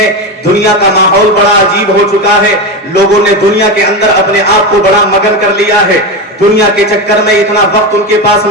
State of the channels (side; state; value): both; normal; correlation 0.17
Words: دنیا کا ماحول بڑا عجیب ہو چکا ہے، لوگوں نے دنیا کے اندر اپنے آپ کو بڑا مگن کر لیا ہے. دنیا کے چکر میں اتنا وقت ان کے پاس